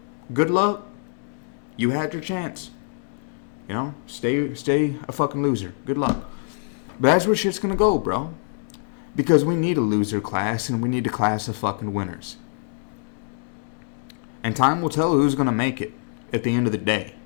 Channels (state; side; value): silent; right; digital silence